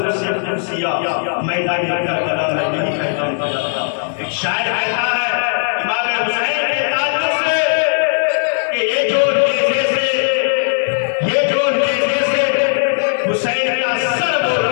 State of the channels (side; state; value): right; silent; 65 dB below the other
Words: कुदसिया मैदान करबला में यही पैगाम दिया था। एक शायर कहता है इमाम हुसैन के ताल्लुक से कि ये जो नेज़े से हुसैन का सर बोल